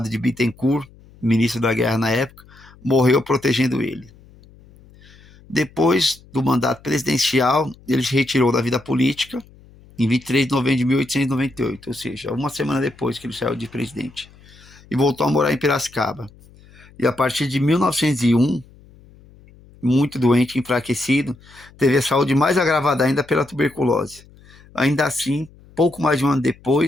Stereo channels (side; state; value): left; noise; hum, 25 dB below the sound